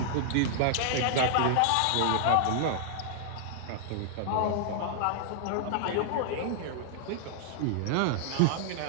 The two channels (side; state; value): both; different; correlation -0.01